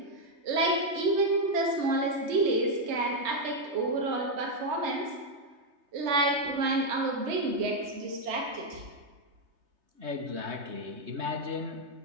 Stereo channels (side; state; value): left; late; 3.3 ms